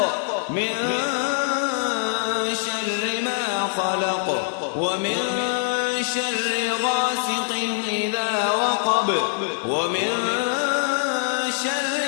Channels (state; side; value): silent; right; 63 dB below the other